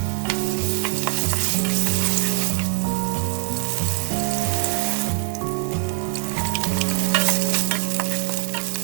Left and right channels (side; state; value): left; quieter; 38.8 dB